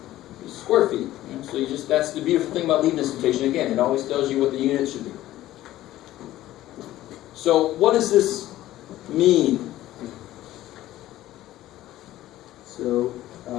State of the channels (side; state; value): right; quieter; 14.7 dB